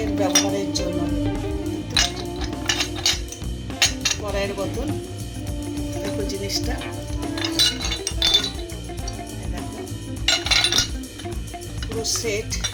ব্যবহারের জন্য, কড়াইয়ের বোতল, দেখো জিনিসটা, দেখো পুরো সেট।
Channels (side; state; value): both; identical; correlation 1.00